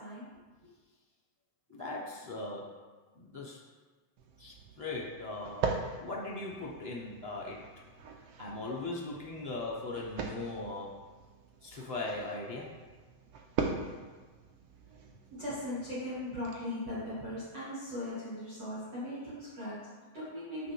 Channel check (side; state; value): left; late; 7.8 ms